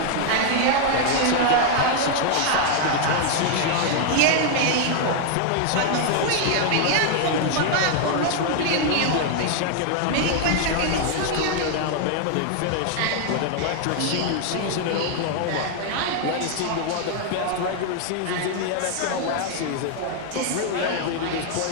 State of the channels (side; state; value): both; different; correlation 0.00